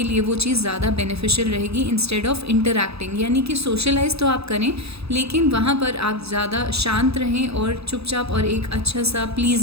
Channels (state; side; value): late; left; 0.78 ms